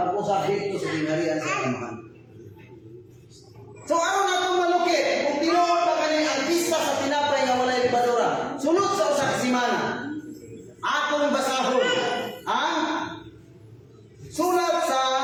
pag-usab dito sa gingharian sa Amahan. So aron natong malukit kung tinuod pa kani ang pista sa tinapay nga walay libadura. Sunod sa usa ka semana atong basahon ang sulat sa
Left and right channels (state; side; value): identical; both; correlation 1.00